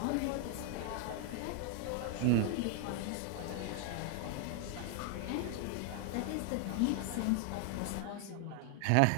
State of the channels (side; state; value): both; different; correlation 0.00